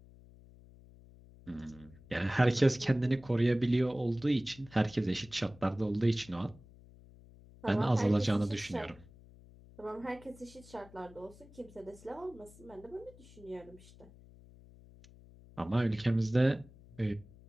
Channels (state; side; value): noise; left; hum, 22 dB below the sound